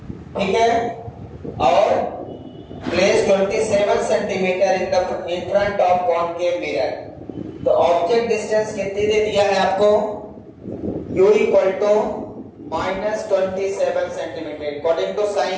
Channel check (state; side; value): identical; both; correlation 1.00